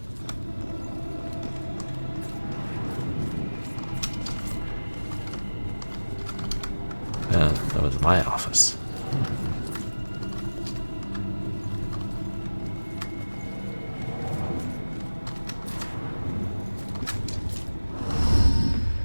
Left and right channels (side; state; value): both; inverted; correlation -1.00